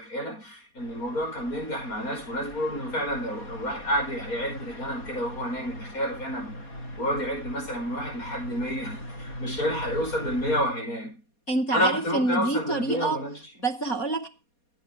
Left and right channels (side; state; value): right; late; 4.2 ms